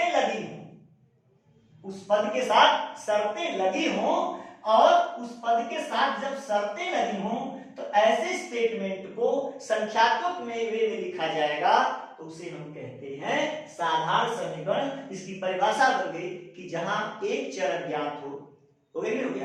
लगी हो, उस पद के साथ शर्तें लगी हो, और उस पद के साथ जब शर्तें लगी हो तो ऐसे स्टेटमेंट को संख्यात्मक में वे में लिखा जाएगा, तो उसे हम कहते हैं साधारण समीकरण। इसकी परिभाषा बन गई कि जहां एक चर अज्ञात हो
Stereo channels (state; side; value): identical; both; correlation 1.00